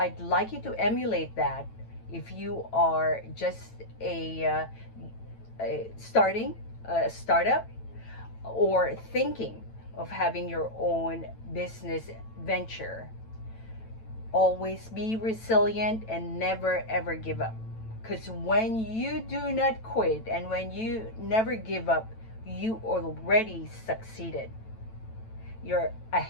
like you to emulate that if you are just starting a startup or thinking of having your own business venture. Always be resilient and never ever give up. Because when you do not quit and when you never give up, you already succeeded. You're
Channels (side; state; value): right; late; 9.0 ms